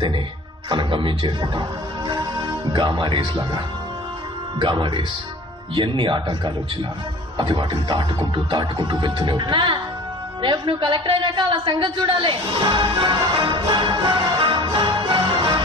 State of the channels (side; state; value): both; normal; correlation 0.44